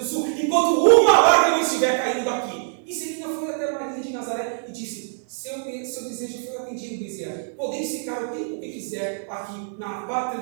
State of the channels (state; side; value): silent; left; 56 dB below the other